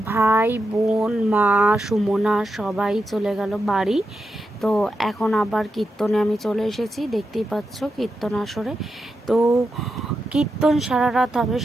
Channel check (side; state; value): both; normal; correlation 0.87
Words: ভাই বোন মা সুমনা সবাই চলে গেল বাড়ি। তো এখন আবার কীর্তনে আমি চলে এসেছি, দেখতেই পাচ্ছ কীর্তন আসরে। তো কীর্তন সারা রাত হবে,